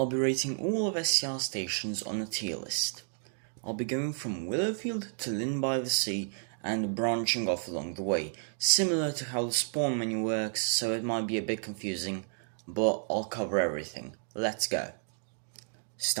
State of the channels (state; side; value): silent; left; 57 dB below the other